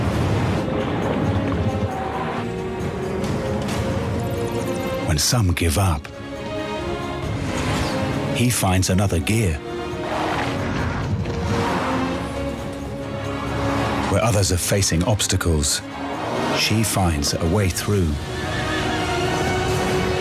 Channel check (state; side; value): identical; both; correlation 1.00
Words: When some give up, he finds another gear. Where others are facing obstacles, she finds a way through.